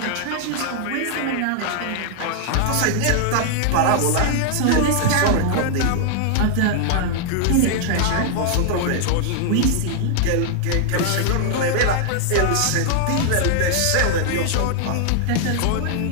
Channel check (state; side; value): different; both; correlation 0.00